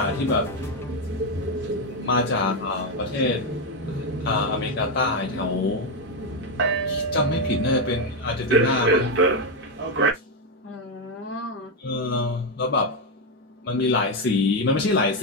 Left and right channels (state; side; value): normal; both; correlation 0.05